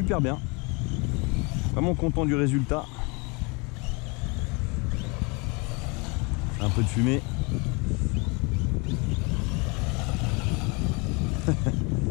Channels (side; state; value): right; quieter; 29.5 dB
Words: bien. Vraiment content du résultat. Un peu de fumée.